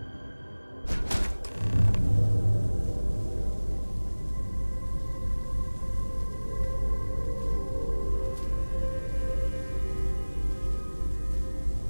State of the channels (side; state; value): both; inverted; correlation -1.00